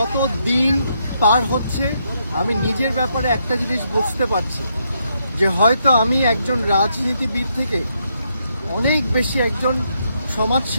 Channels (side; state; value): both; inverted; correlation -0.77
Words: দিন পার হচ্ছে আমি নিজের ব্যাপারে একটা জিনিস বুঝতে পারছি যে হয়তো আমি একজন রাজনীতিবিদ থেকে অনেক বেশি একজন